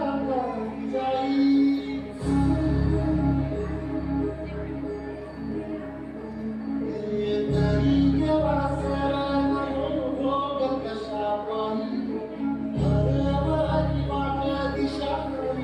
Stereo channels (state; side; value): identical; both; correlation 1.00